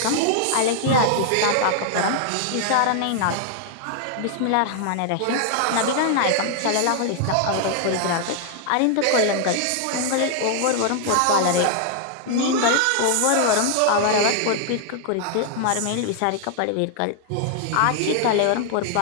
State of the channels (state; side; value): different; both; correlation 0.00